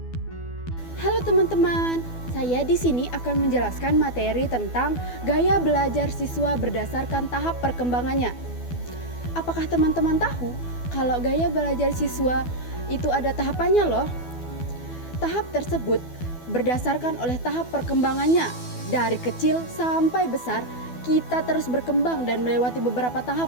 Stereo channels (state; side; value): late; right; 12 ms